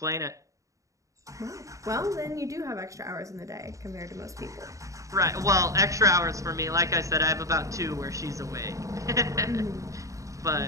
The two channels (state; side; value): late; left; 0.16 ms